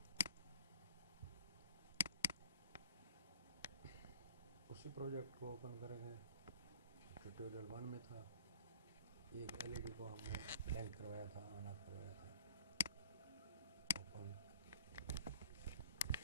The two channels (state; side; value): inverted; both; correlation -0.44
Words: उसी प्रोजेक्ट को ओपन करेंगे। ट्यूटोरियल 1 में था, एक एलईडी को हमने ब्लैंक करवाया था, ऑन ऑफ करवाया था। ओपन